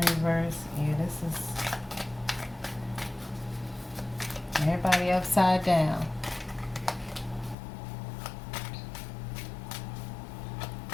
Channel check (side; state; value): right; drops out; at 7.6 s